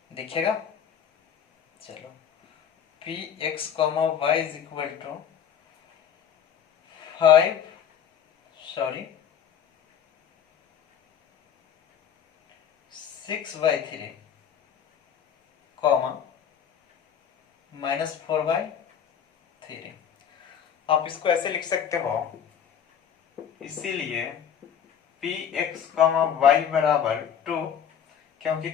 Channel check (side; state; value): right; quieter; 8.4 dB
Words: दिखेगा, चलो Px, y = 6/3, -4/3। आप इसको ऐसे लिख सकते हो, इसीलिए Px, y बराबर 2, क्योंकि